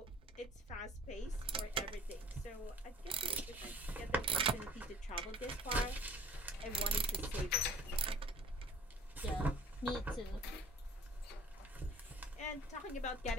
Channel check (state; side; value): normal; both; correlation 0.51